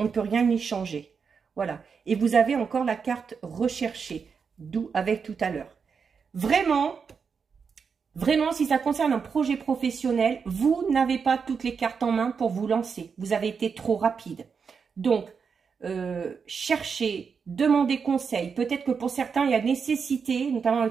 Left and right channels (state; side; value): quieter; left; 5.9 dB